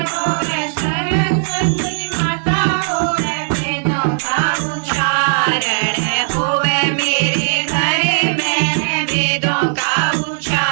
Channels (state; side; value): silent; left; digital silence